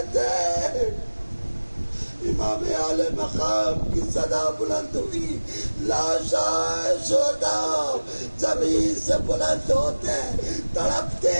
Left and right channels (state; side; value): inverted; both; correlation -1.00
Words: امام اعلی مقام کی صدا بلند ہوئی، لاشائے شہداء زمین سے بلند ہوتے ہیں، تڑپتے